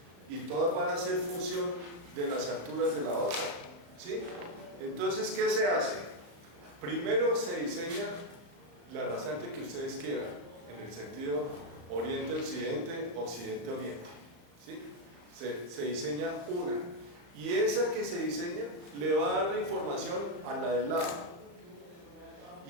Y todas van a ser función de las alturas de la otra, ¿sí? Entonces, ¿qué se hace? Primero se diseña la rasante que ustedes quieran, en el sentido oriente-occidente, occidente-oriente, ¿sí? Se diseña una, y esa que se diseña le va a dar la información a la del lado,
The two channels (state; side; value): late; left; 35 ms